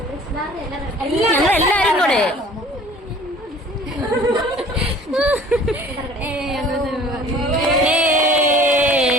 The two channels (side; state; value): both; normal; correlation 0.49